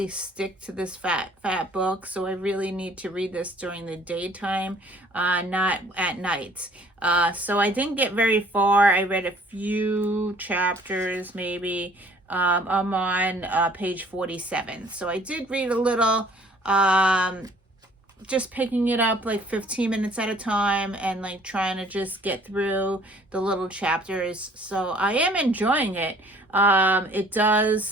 stick to this fat book, so I really need to read this during the daytime, not at night. So I didn't get very far. I read a few chapters, maybe. I'm on page 47. So I did read a little, just picking it up like 15 minutes at a time and like trying to just get through the little chapters. So I am enjoying it. It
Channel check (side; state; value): both; normal; correlation 0.56